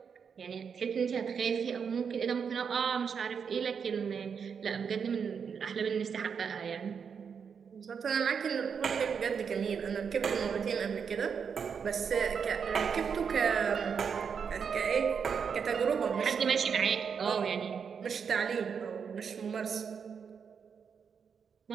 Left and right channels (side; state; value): left; quieter; 6.6 dB